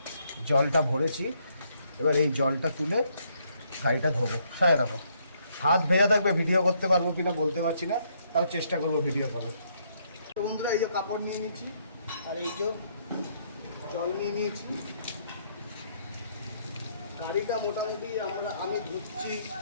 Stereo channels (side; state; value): both; inverted; correlation -0.71